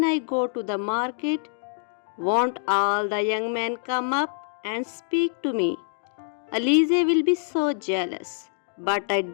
I go to the market, won't all the young men come up and speak to me? Alize will be so jealous, but I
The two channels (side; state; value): right; silent; digital silence